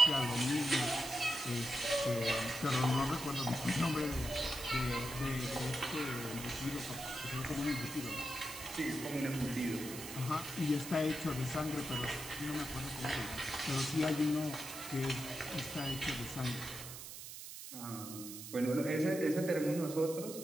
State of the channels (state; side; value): noise; right; hiss, 10 dB below the sound